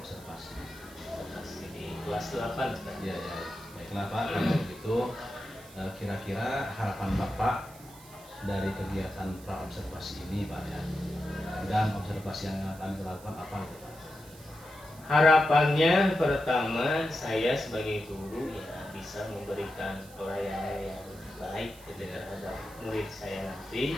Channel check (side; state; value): right; noise; hiss, 20 dB below the sound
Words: Observasi di kelas 8 kan? Ya, baiklah Pak, kalau begitu kira-kira harapan Bapak dari kegiatan pra-observasi ini Pak ya, dan observasi yang akan dilakukan apa itu Pak? Harapannya pertama saya sebagai guru ya bisa memberikan pelayanan yang baik terhadap murid saya nanti.